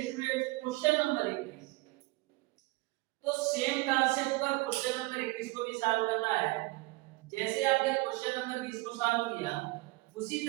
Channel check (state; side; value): quieter; left; 22.6 dB